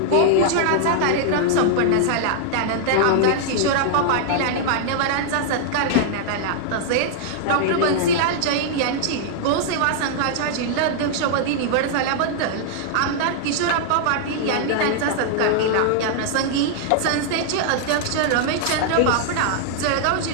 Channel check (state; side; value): different; both; correlation -0.01